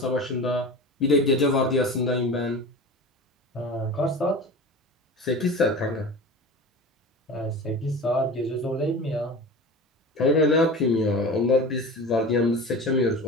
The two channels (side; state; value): both; normal; correlation 0.33